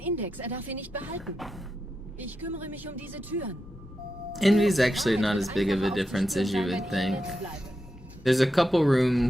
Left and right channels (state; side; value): normal; both; correlation 0.87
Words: er darf ihn nicht behalten. Ich kümmere mich um diese Türen. Envy's actually not as big of a difference as you would think. There's a couple